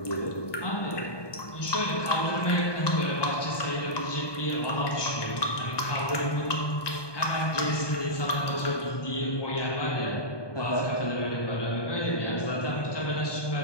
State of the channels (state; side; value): late; right; 1.2 ms